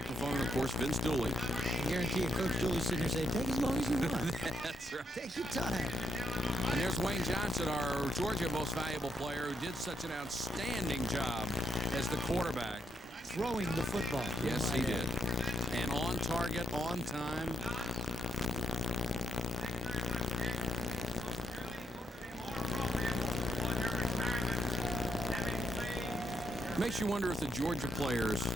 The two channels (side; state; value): both; normal; correlation 0.74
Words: and of course Vince Dooley. I guarantee you, Coach Dooley sitting here saying, take as long as you want. That's right. Take your time. And there's Wayne Johnson, our Georgia most valuable player, who did such an outstanding job as the quarterback. Throwing the football. Yes, he did. And on target, on time. Makes you wonder if the Georgia players